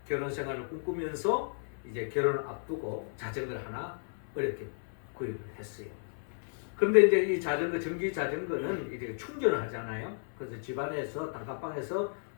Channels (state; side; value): silent; right; 56 dB below the other